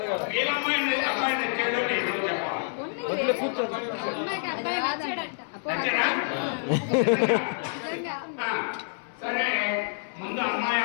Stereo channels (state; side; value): silent; right; 60 dB below the other